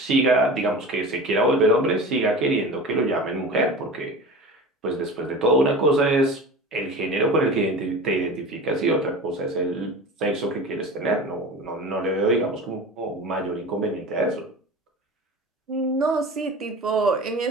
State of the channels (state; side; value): normal; both; correlation 0.34